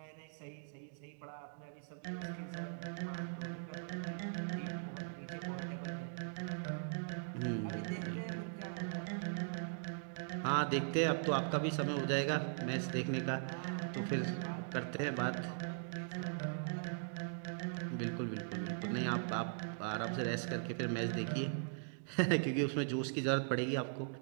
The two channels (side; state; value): left; silent; digital silence